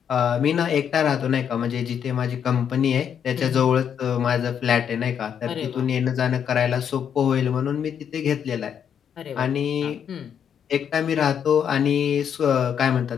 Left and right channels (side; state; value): right; quieter; 8.2 dB